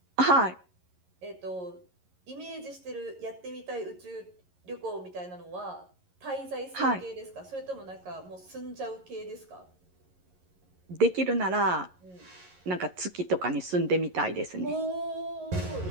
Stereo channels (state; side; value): late; left; 11 ms